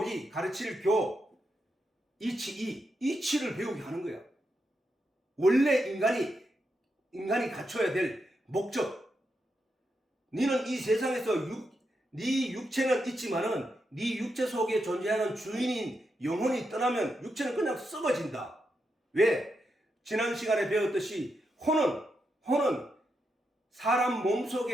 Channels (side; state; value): both; normal; correlation 0.84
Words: 가르칠 이치를 배우게 하는 거야. 원래 인간이 갖춰야 될 목적, 너는 이 세상에서 네 육체는 있지만은 네 육체 속에 존재하는 주인인 영혼이 떠나면 육체는 그냥 썩어진다. 왜? 지난 시간에 배웠듯이 혼은 사람